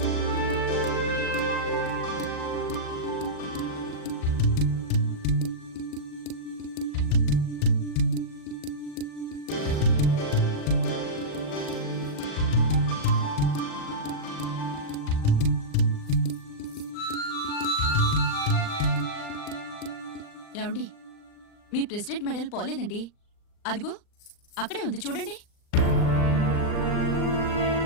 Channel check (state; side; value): late; right; 39 ms